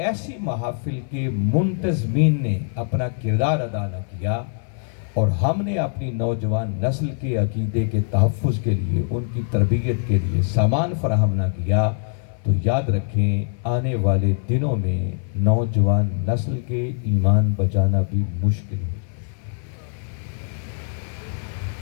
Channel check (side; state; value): right; silent; 60 dB below the other